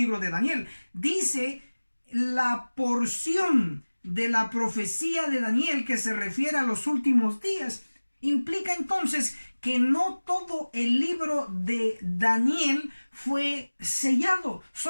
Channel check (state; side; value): inverted; both; correlation -1.00